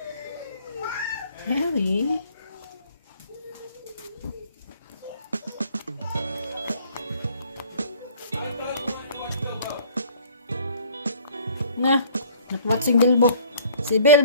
Harry. Na, nakwatsing Bilbo. Si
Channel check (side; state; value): both; inverted; correlation -0.54